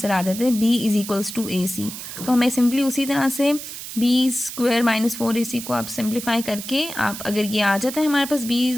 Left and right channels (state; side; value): noise; right; hiss, 10 dB below the sound